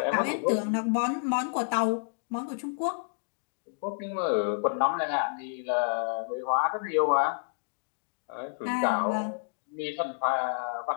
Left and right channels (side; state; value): right; silent; digital silence